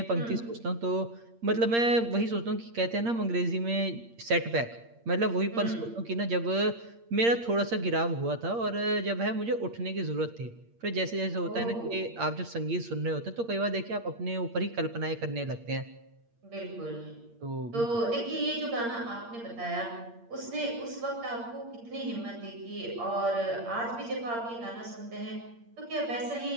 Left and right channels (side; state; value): left; late; 8.6 ms